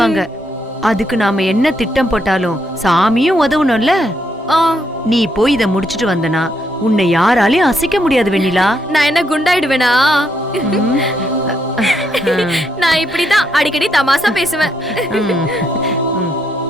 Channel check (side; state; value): both; normal; correlation 0.77